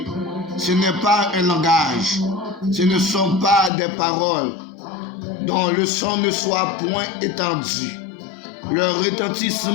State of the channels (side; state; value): right; drops out; at 3.7 s